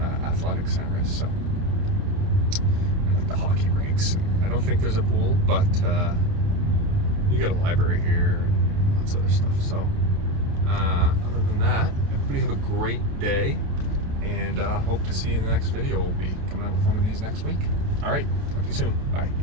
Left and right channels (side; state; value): left; late; 28 ms